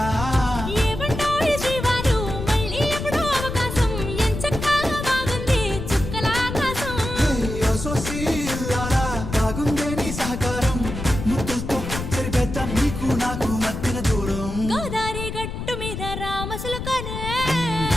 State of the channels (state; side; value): noise; left; rumble, 6 dB below the sound